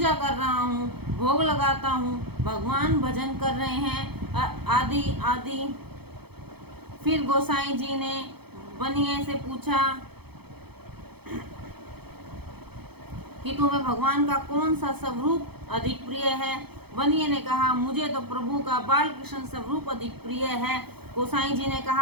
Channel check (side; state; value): left; late; 0.97 ms